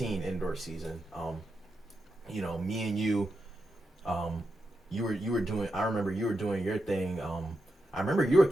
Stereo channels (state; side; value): normal; both; correlation 0.86